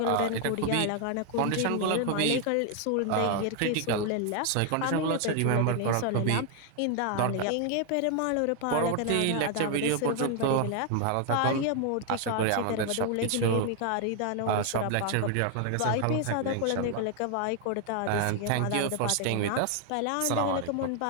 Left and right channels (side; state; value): both; different; correlation 0.00